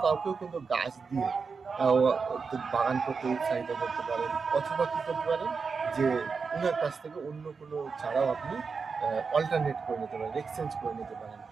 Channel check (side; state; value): left; quieter; 5.1 dB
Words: কাউকেও কিন্তু গাছ দিয়ে বাগান করতে উৎসাহিত করতে পারেন, অথবা কী করতে পারেন যে ওনার কাছ থেকে অন্য কোনো চারাও আপনি অল্টারনেট করে নিতে পারেন, এক্সচেঞ্জ করে নিতে পারেন।